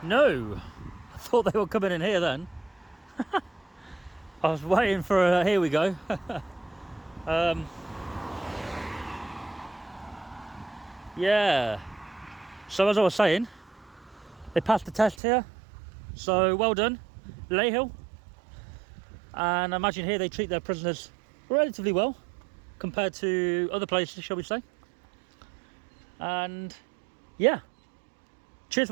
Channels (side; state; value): left; drops out; at 15.2 s